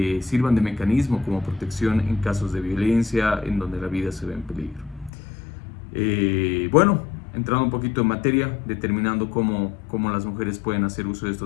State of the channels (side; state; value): right; drops out; at 5.1 s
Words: sirvan de mecanismo como protección en casos de violencia en donde la vida se ve en peligro. Bueno, entrando un poquito en materia, determinando cómo las mujeres pueden hacer uso de